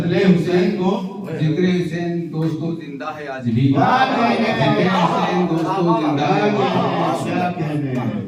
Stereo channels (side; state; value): both; identical; correlation 1.00